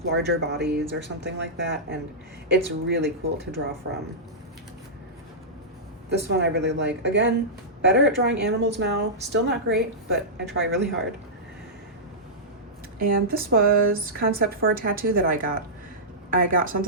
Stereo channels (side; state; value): both; normal; correlation -0.13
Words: larger bodies or something like that, and it's really cool to draw from. This one I really like. Again, better at drawing animals now. Still not great, but I try really hard. And this was concept for a tattoo that I got. I got